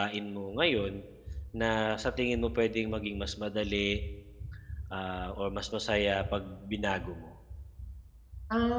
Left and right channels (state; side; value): identical; both; correlation 1.00